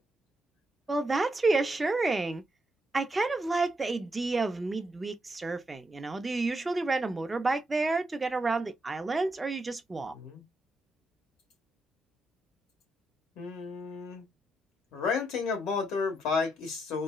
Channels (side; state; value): both; normal; correlation 0.82